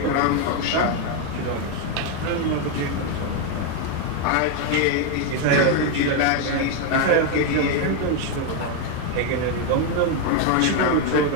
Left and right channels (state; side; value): different; both; correlation 0.01